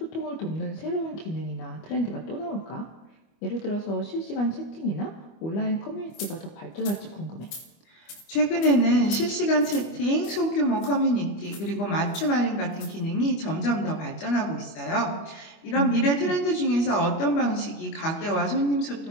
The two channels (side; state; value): right; late; 25 ms